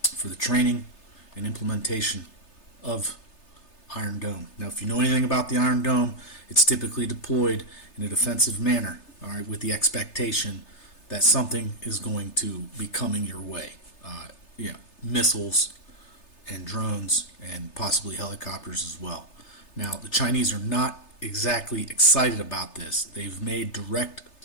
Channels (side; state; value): right; late; 3.3 ms